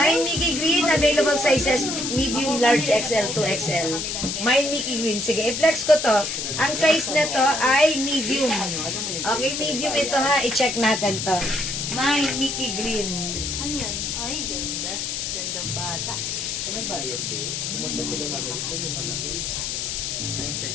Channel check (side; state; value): left; noise; hiss, 3 dB below the sound